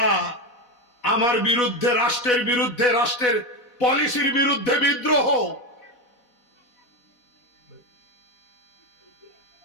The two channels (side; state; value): right; late; 4.1 ms